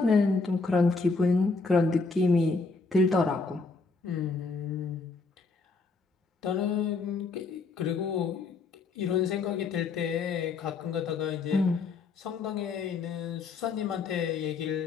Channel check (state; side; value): quieter; right; 4.2 dB